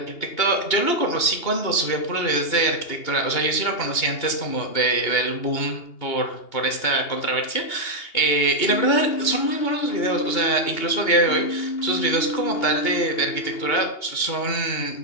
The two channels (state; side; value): late; right; 2.8 ms